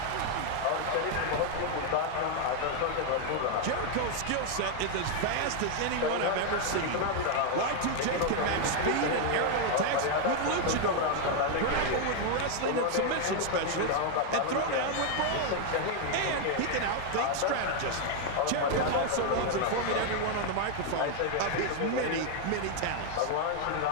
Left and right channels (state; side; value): different; both; correlation 0.00